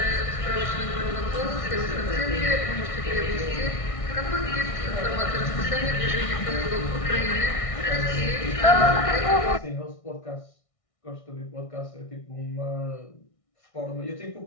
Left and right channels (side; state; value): right; late; 1.6 ms